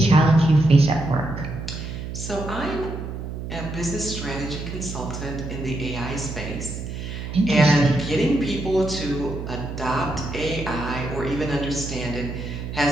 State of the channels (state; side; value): noise; right; hum, 7 dB below the sound